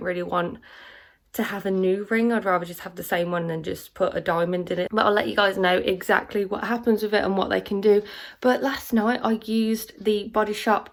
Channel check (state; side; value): identical; both; correlation 1.00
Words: really want to have a new ring. I'd rather just have the same one and just put a diamond in it. But I'll let you guys know exactly what happens with it and what they can do. But last night I used the Body